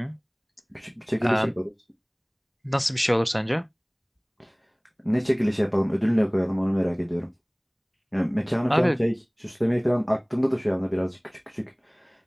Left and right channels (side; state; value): both; identical; correlation 1.00